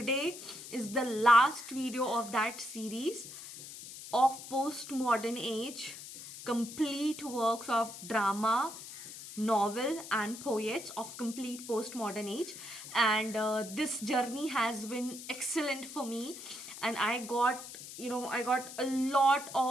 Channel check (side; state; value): left; noise; hiss, 12 dB below the sound